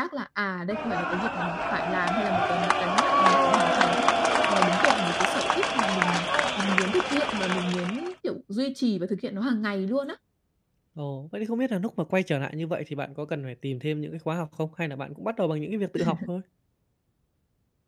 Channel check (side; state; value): both; identical; correlation 1.00